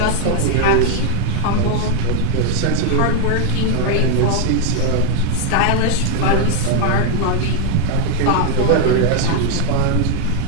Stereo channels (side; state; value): both; different; correlation 0.01